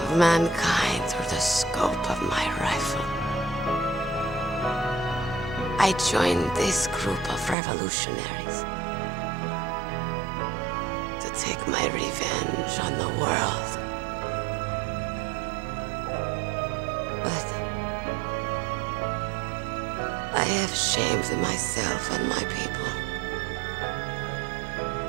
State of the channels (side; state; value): left; drops out; at 7.6 s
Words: mankind through the scope of my rifle. I joined this group of revolutionaries to take my revenge on the world. But I I have shamed myself and my people.